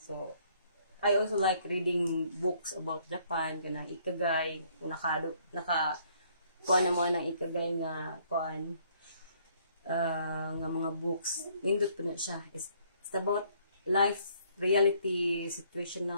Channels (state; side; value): inverted; both; correlation -0.64